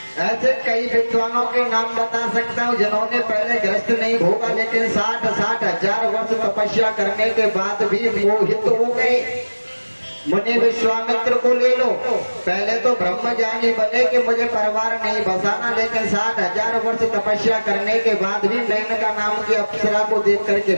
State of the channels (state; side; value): inverted; both; correlation -1.00